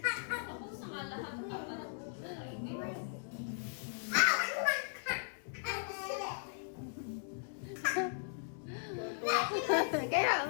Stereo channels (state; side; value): silent; right; digital silence